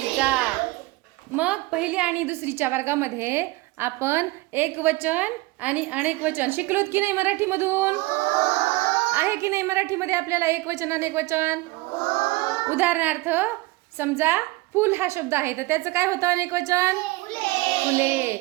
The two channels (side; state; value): left; quieter; 20.9 dB